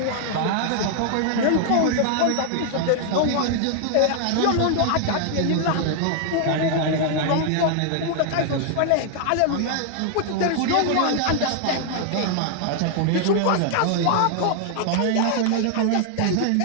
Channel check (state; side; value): different; both; correlation 0.00